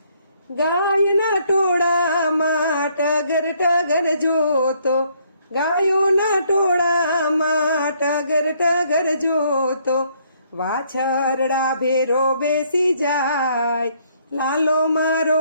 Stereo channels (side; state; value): both; inverted; correlation -0.68